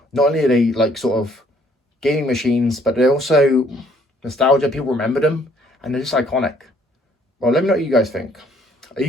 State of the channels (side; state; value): both; normal; correlation 0.62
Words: not only are they like sort of gaming machines, but they're also nostalgia. People remember them, and they're just iconic. Well, let me know what you guys think. Are you